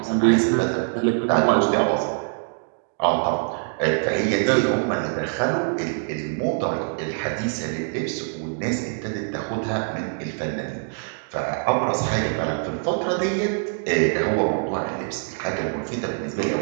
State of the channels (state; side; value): silent; left; 63 dB below the other